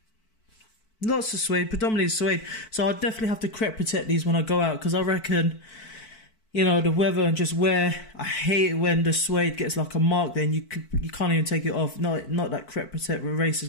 Lots of suede, predominantly suede. So I'll definitely have to crep protect these when I go out, because I reckon, you know, the weather and just wear. I hate it when the suede gets like a mark. Then you can't even take it off. Not that crep protect eraser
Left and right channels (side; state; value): right; late; 4.5 ms